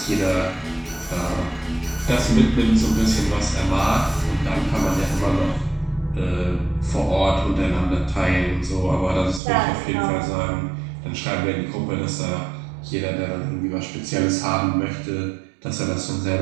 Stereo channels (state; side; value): drops out; left; at 9.4 s